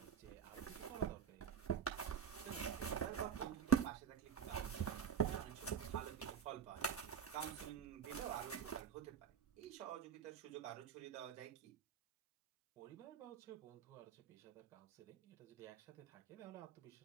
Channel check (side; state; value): left; quieter; 7.9 dB